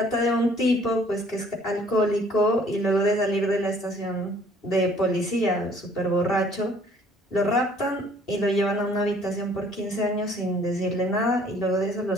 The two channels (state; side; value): normal; both; correlation 0.58